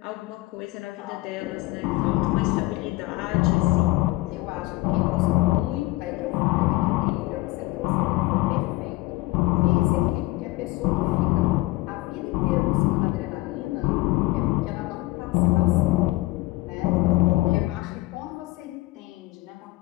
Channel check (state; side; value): quieter; right; 20.1 dB